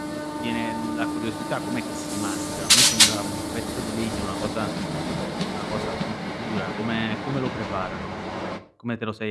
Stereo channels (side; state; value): both; identical; correlation 1.00